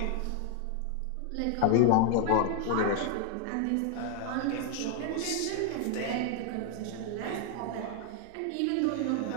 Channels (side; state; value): both; different; correlation 0.00